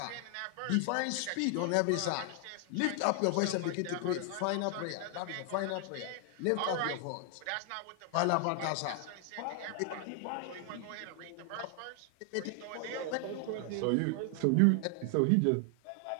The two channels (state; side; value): different; both; correlation 0.00